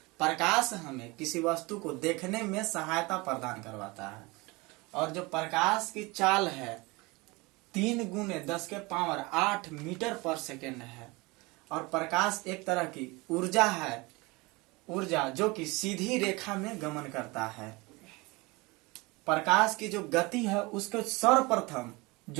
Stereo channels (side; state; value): left; quieter; 24.5 dB